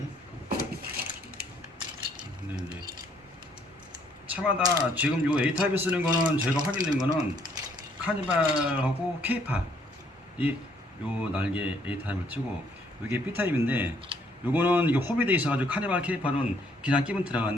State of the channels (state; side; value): normal; both; correlation 0.67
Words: 근데 이제 차마다 지금 요 A 타입에 쓰는 거는 제가 확인된 거는 카니발하고 K8 이요 날개 A 타입을 치고 이게 B 타입인데 요거는 이게 호비돼 있어가지고 카니발 K8은 그냥 끼면